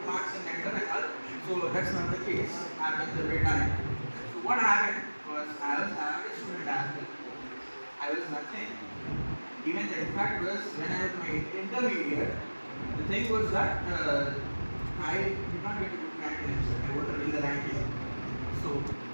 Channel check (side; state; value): both; inverted; correlation -1.00